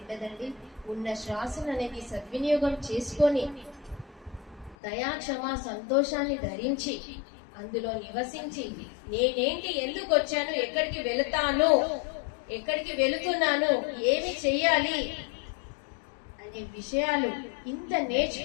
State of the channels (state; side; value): drops out; right; at 4.8 s